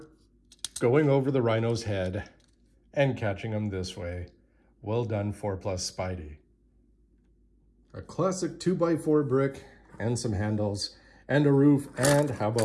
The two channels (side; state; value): both; identical; correlation 1.00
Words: going over the Rhino's head and catching him this way. Well done, 4+ Spidey. A classic 2x4 brick and some handles and a roof, and how